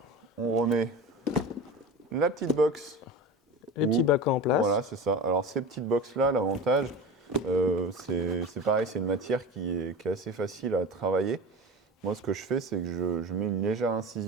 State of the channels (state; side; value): normal; both; correlation 0.30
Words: on remet la petite box. Les petits bacs en place. Voilà, c'est ça. Alors, ces petites box-là, l'avantage, C'est pareil, c'est une matière qui est assez facile à travailler. Moi, ce que je fais, c'est que je mets une légère